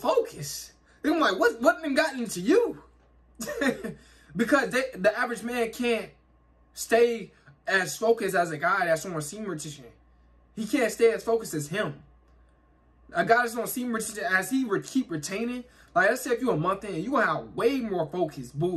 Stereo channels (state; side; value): identical; both; correlation 1.00